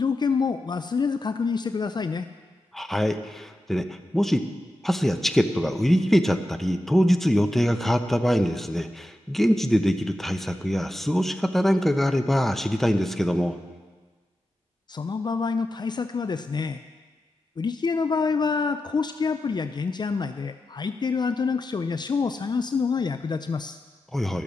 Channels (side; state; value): both; normal; correlation 0.91